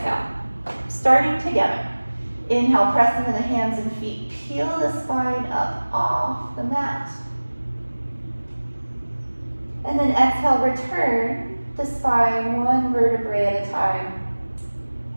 Starting together. Inhale, press into the hands and feet. Peel the spine up off the mat. And then exhale, return the spine one vertebrae at a time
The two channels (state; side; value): inverted; both; correlation -1.00